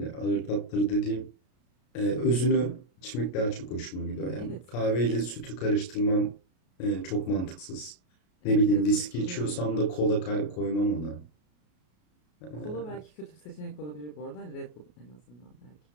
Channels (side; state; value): right; late; 33 ms